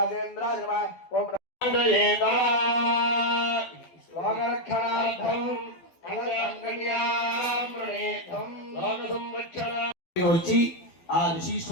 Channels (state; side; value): late; right; 12 ms